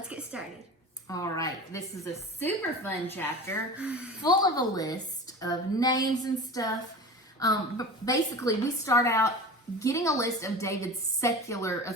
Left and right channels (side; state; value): both; normal; correlation 0.34